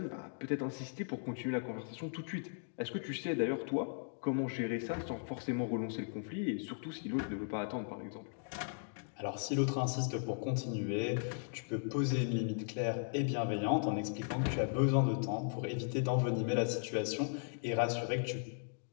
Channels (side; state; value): right; silent; digital silence